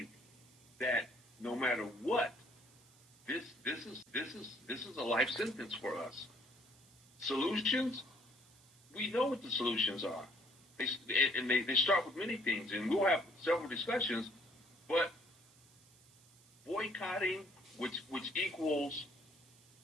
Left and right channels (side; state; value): right; noise; hiss, 27 dB below the sound